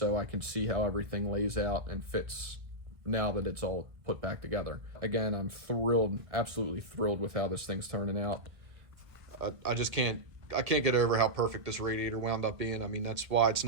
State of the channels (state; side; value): late; left; 1.5 ms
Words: I can see how everything lays out and fits now that it's all put back together. Again, I'm thrilled, absolutely thrilled with how this thing's turning out. I can't get over how perfect this radiator wound up being. I mean, that's why it's